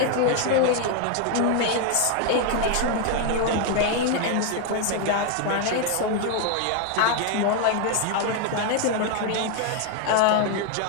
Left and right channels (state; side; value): different; both; correlation 0.00